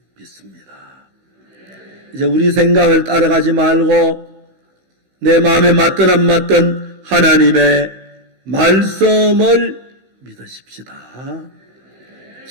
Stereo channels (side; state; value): left; late; 16 ms